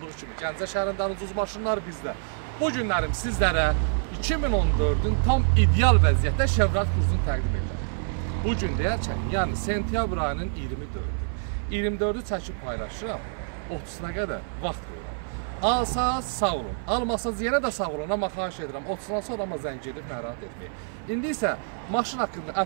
kimi Gəncə şəhərindən ucuz maşınlar bizdə. Bu günlərim sizlərə 2014-ün tam ideal vəziyyətdə Chevrolet Cruze'unu təqdim edirəm. Bu gün deyərkən, yəni sentyabr ayının 24-ü çəkib paylaşıram, 30-una qədər vaxt qoyuram. Alsaz sağ olun, almasaz yenə də sağ olun, amma xahiş edirəm, 30-dan sonra amma zəng edib narahat etməyin. İndi isə maşın haqqında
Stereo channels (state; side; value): silent; left; 56 dB below the other